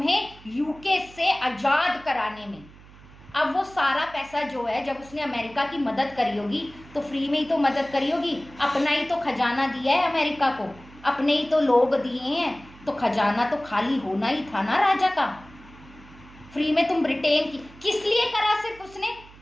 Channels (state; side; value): noise; right; hum, 22 dB below the sound